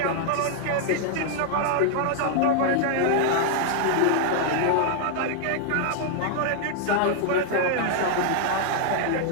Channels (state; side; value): different; both; correlation 0.00